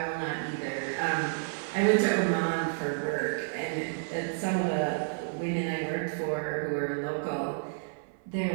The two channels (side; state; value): left; silent; 58 dB below the other